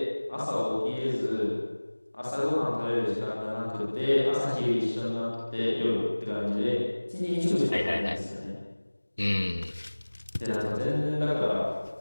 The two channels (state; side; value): inverted; both; correlation -1.00